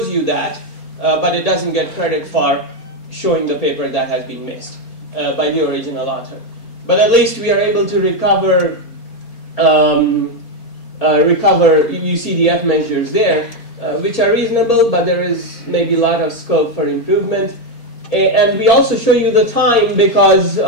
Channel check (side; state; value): right; late; 4.3 ms